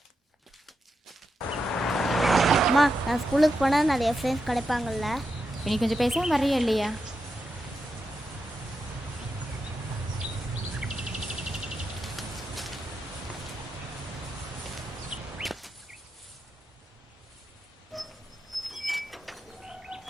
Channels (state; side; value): normal; both; correlation 0.86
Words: அம்மா நான் ஸ்கூலுக்கு போனால் நிறைய ஃப்ரெண்ட்ஸ் கிடைப்பாங்கல்ல? நீ கொஞ்சம் பேசாமல் வர்றியா இல்லையா?